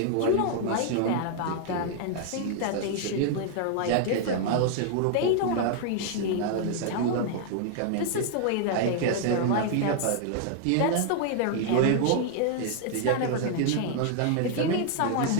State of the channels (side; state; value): both; different; correlation 0.00